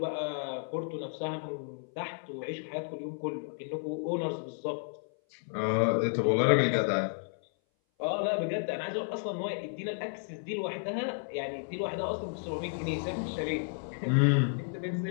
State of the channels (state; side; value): silent; right; 56 dB below the other